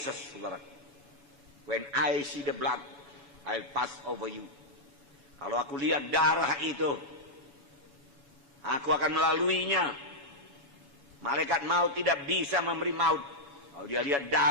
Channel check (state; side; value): late; left; 7.1 ms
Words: saudaraku. When I see the blood, I'll pass over you. Kalau aku lihat darah itu, aku akan melaluinya. Malaikat maut tidak bisa memberi maut. Kalau dia lihat